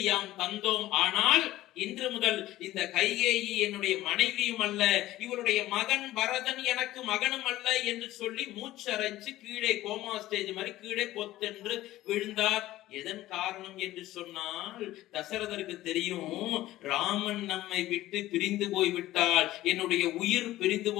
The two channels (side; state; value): right; quieter; 15.7 dB